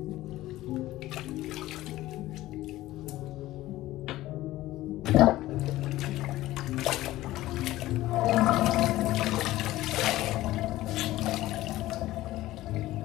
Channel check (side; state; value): right; quieter; 16.2 dB